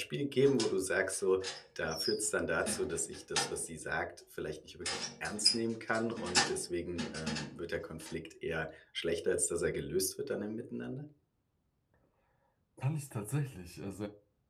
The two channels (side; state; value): both; identical; correlation 1.00